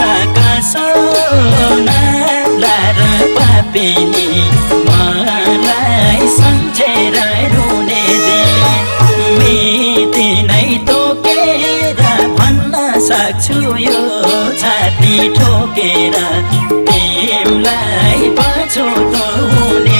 सोना लार पापिनी मलाई सम्झेर रुने मिति नै तोकेर भन्न सक्छु यो छाती ठोकेर तिमलाई पछुतो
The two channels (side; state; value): both; inverted; correlation -1.00